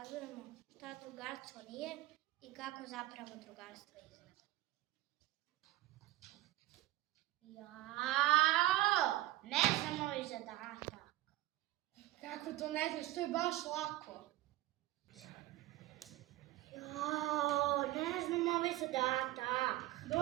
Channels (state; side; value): quieter; left; 16.1 dB